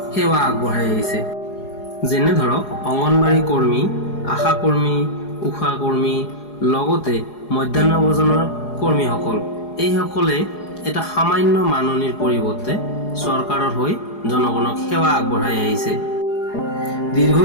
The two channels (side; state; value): right; late; 4.8 ms